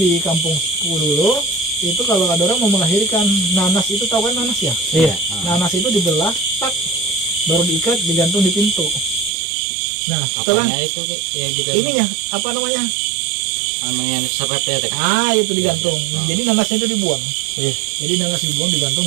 kampungku dulu, itu kalau ada orang mau melahirkan, nanas itu, tahu kan nanas ya? Iya. Nanas itu dibelah, tak, baru diikat, digantung di pintu. Nah, setelah itu ya gitu. Ininya apa namanya? Yang serepnya teh. Itu digantung. Jadi nanasnya itu dibuang. Iya. Jadi nanas dibuang, digantung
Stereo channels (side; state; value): left; drops out; at 9.3 s